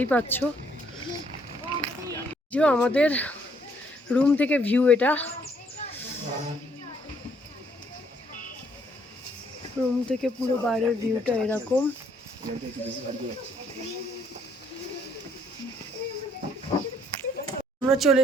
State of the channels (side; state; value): both; normal; correlation 0.67